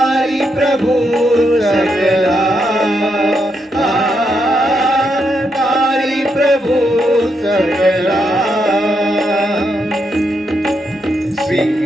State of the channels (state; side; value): normal; both; correlation 0.80